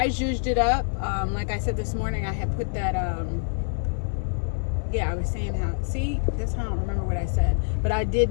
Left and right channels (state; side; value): silent; right; digital silence